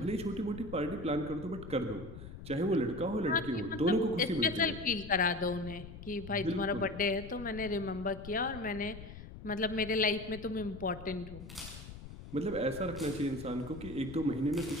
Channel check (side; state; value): left; noise; rumble, 13 dB below the sound